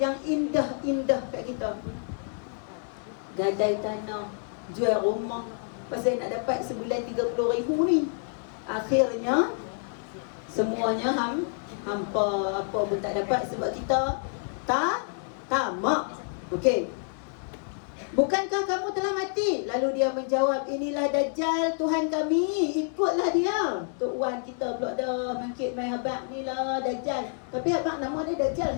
indah-indah kat kita. Gadai tanah, jual rumah, pasal nak dapat sebulan 30,000 ni. Akhirnya semuanya hampa, apa pun tak dapat sebab kita tamak. Okey. Bukankah kamu telah mati? Lalu dia menjawab, inilah Dajjal, Tuhan kami, ikutlah dia. Tok Wan kita pula dah mangkit main abang ni lah Dajjal. Tapi abang nama dia Dajjal,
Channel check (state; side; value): silent; right; 57 dB below the other